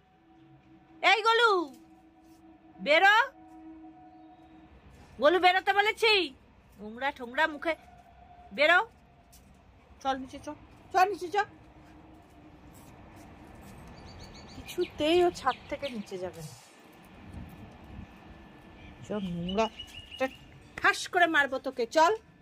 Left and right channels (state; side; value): identical; both; correlation 1.00